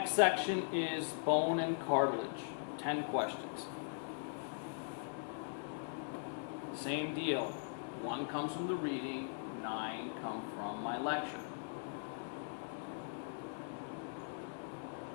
section is bone and cartilage, 10 questions. Same deal, 1 comes from the reading, 9 come from my lecture.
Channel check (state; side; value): silent; right; digital silence